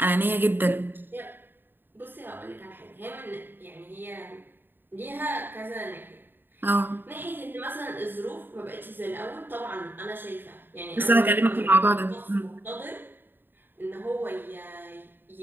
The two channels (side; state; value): left; late; 0.095 ms